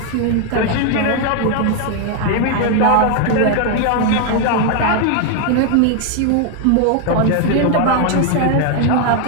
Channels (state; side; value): different; both; correlation 0.00